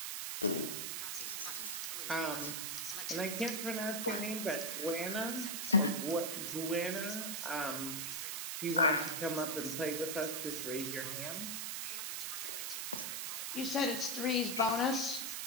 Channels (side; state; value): right; noise; hiss, 2 dB below the sound